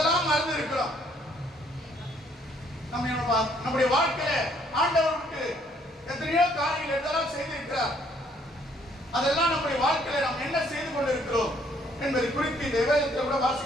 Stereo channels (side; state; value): both; normal; correlation 0.65